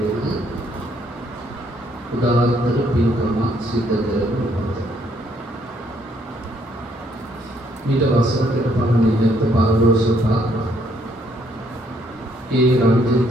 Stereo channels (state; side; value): normal; both; correlation 0.68